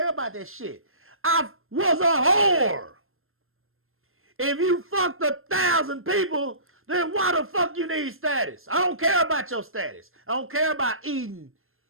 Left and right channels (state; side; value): late; left; 0.60 ms